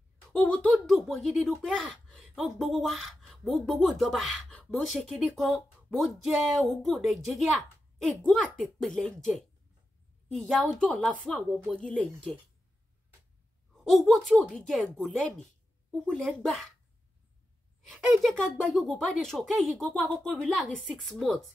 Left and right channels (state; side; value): normal; both; correlation 0.90